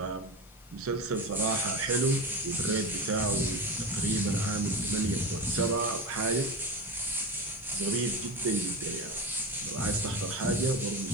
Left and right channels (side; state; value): left; noise; hiss, 27 dB below the sound